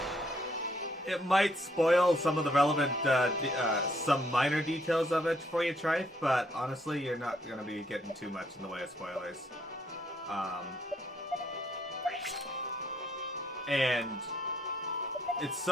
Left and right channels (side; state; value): both; normal; correlation 0.70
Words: it might spoil some of the relevant, some minor details of it for you, Trife, but honestly, you're not gonna be getting too much in the way of spoilers. And it's